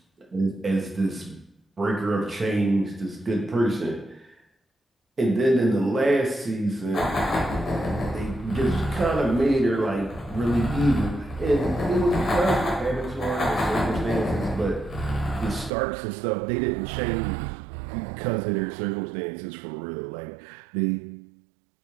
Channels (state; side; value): drops out; left; at 15.7 s